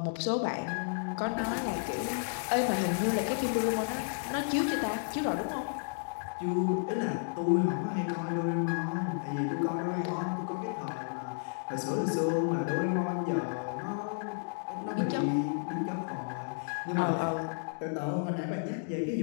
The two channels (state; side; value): silent; right; digital silence